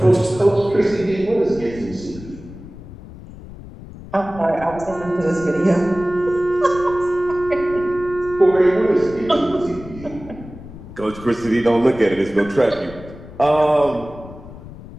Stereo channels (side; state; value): left; noise; rumble, 16 dB below the sound